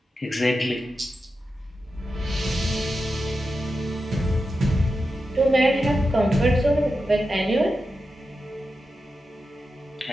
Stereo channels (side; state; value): both; normal; correlation 0.90